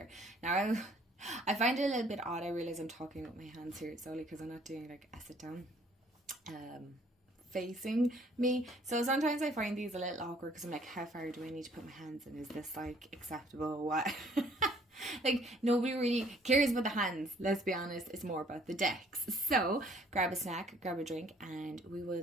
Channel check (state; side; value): normal; both; correlation 0.60